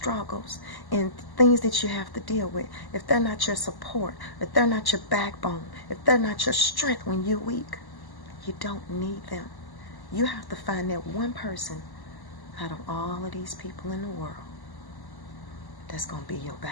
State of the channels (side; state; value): right; late; 1.1 ms